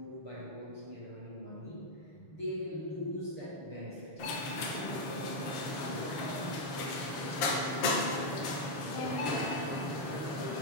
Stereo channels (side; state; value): right; late; 7.2 ms